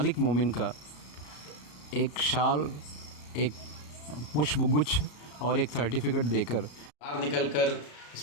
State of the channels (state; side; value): late; right; 34 ms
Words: मोमिन का एक शाल, एक पुष्पगुच्छ और एक सर्टिफिकेट देकर बाहर निकलकर